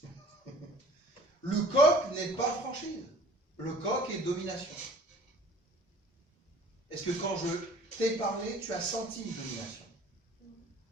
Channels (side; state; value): both; normal; correlation 0.49